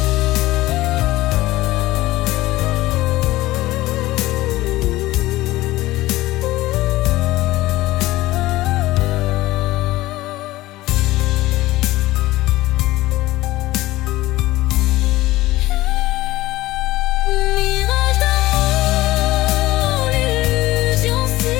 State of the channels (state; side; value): quieter; right; 17.6 dB